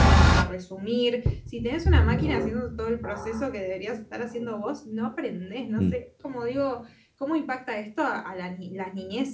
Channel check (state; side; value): identical; both; correlation 1.00